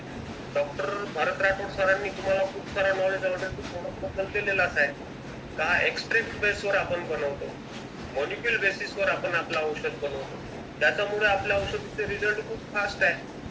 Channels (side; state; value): both; identical; correlation 1.00